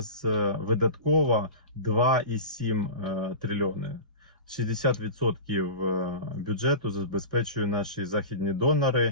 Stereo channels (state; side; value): inverted; both; correlation -0.31